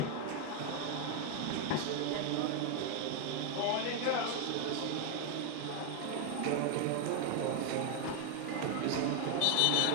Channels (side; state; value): both; different; correlation 0.01